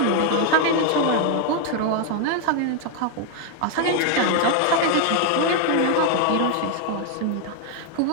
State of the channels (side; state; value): both; different; correlation 0.00